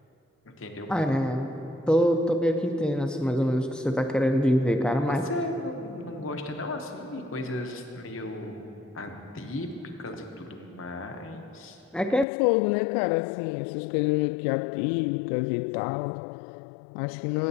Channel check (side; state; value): right; drops out; at 12.2 s